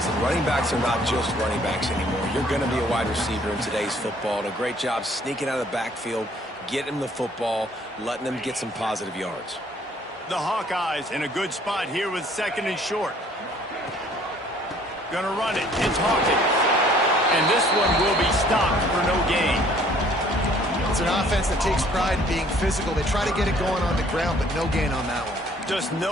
running backs are not just running backs anymore. You're going to be a wide receiver in today's football. And a great job sneaking out of the backfield, getting him the football, letting him get some positive yards. The Hawkeyes in a good spot here with 2nd and short. Gonna run it. It's Hawkins. And this one will be stopped for no gain. It's an offense that takes pride in being physical. They try to get it going on the ground, but no gain on that one. Just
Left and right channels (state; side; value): normal; both; correlation 0.58